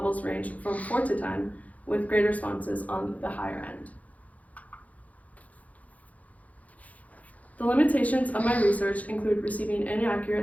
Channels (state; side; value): late; right; 0.071 ms